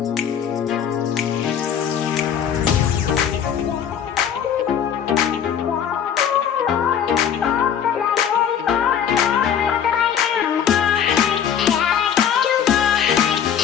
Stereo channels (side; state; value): right; quieter; 8.5 dB